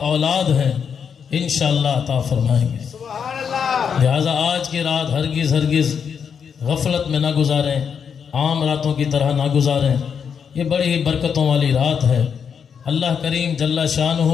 اولاد ہیں انشاءاللہ عطا فرمائیں گے۔ لہذا آج کی رات ہرگز غفلت میں نہ گزاریں، عام راتوں کی طرح نہ گزاریں، یہ بڑی ہی برکتوں والی رات ہے۔ اللہ کریم جل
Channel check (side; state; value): right; quieter; 7.0 dB